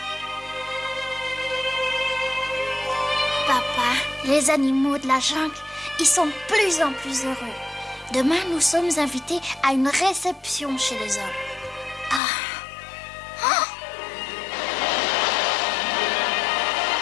papa, les animaux de la jungle, ils sont de plus en plus heureux. Demain, nous sommes invités à une réception chez les hommes. Ah. Oh.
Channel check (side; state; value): right; drops out; at 12.2 s